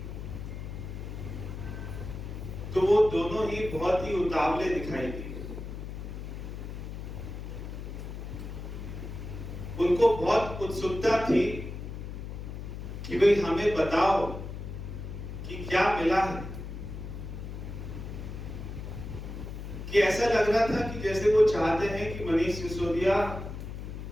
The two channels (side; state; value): left; noise; hum, 8 dB below the sound